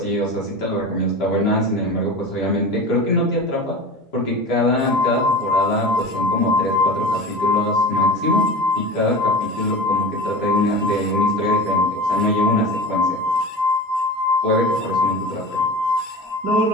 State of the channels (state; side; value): normal; both; correlation 0.31